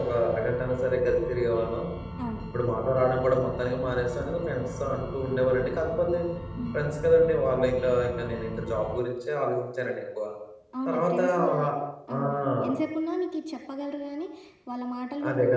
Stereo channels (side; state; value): both; identical; correlation 1.00